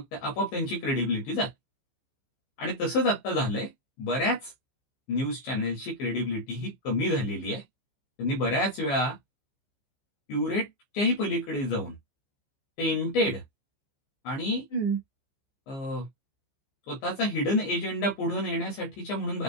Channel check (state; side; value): late; right; 15 ms